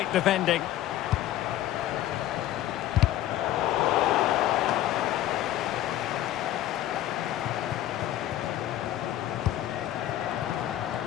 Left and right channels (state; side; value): quieter; right; 13.2 dB